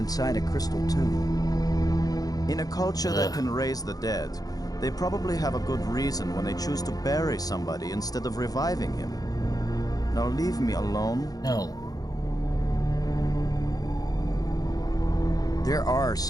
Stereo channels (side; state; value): right; late; 0.18 ms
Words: a crystal tomb. In a culture Ugh. that can raise the dead, they probably have a good reason when they choose to bury somebody instead of reviving him. Now leave me alone. No. There are